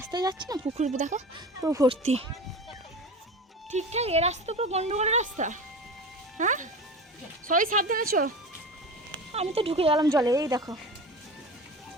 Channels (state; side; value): normal; both; correlation 0.32